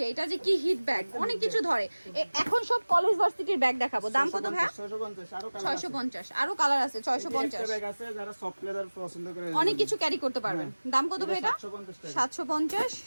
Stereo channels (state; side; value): inverted; both; correlation -1.00